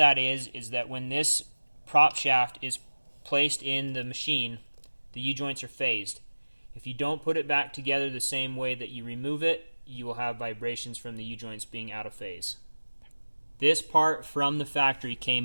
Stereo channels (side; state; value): both; inverted; correlation -1.00